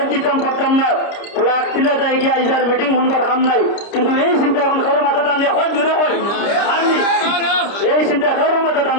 দিতাম পারতাম না, ফ্লাগ তিলে যাই গিয়ে আইসার মিটিং শুনবার কাম নাই। কিন্তু এই চিন্তা এখন কারো মাথা টানলে হয় জুড়ে হয় আমি এই চিন্তা কারো মাথা টান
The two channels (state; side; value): late; right; 30 ms